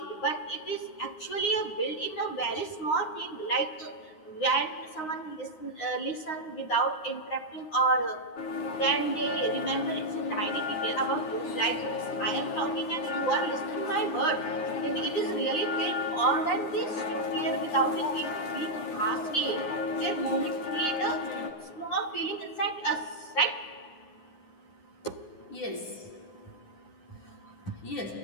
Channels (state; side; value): late; right; 9.7 ms